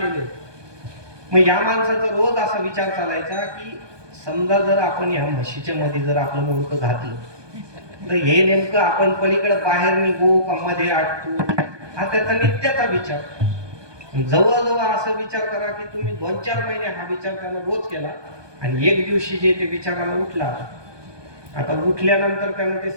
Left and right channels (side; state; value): left; late; 1.2 ms